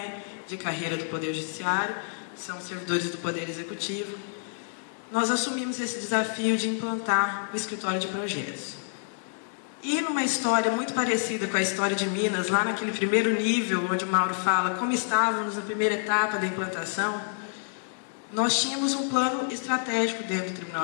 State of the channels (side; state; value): right; silent; digital silence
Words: de carreira do Poder Judiciário, são servidores do Poder Executivo. Nós assumimos esse desafio de implantar o escritório de projetos. E numa história muito parecida com a história de Minas, lá naquele primeiro nível, onde o Mauro fala como estávamos na primeira etapa da implantação, nós tínhamos um plano estratégico dentro do